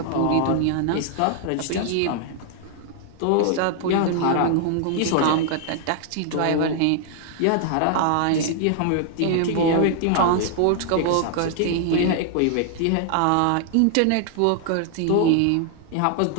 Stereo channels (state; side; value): different; both; correlation 0.00